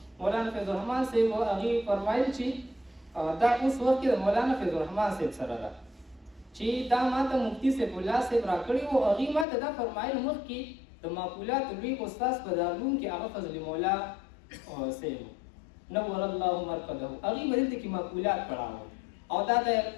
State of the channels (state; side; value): drops out; right; at 9.5 s